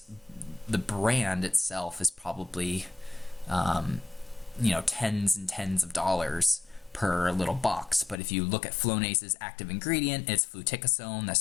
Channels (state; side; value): drops out; right; at 8.2 s